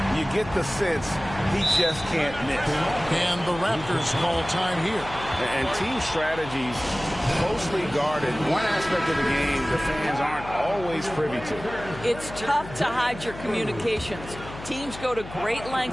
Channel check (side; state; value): left; noise; hum, 13 dB below the sound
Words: You get the sense he just can't miss. And the Raptors call time here. And team strategies closely guarded. One aspect of the game the fans aren't always privy to. It's tough to hide your communications. Teams go to great